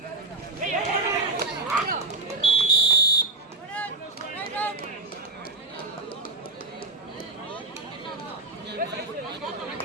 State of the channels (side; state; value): left; quieter; 3.1 dB